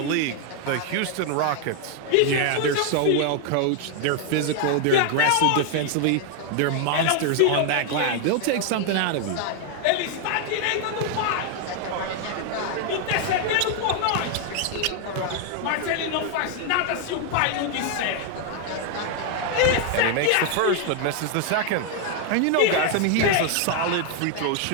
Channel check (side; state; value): both; different; correlation 0.00